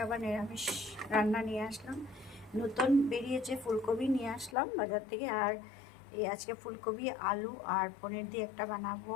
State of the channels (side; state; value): right; drops out; at 4.5 s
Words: আবার নিরামিষ রান্না নিয়ে আসলাম। নতুন বেরিয়েছে ফুলকপি, নিয়ে আসলাম বাজার থেকে। আর এই আজকে ফুলকপি, আলু আর পনির দিয়ে একটা বানাবো।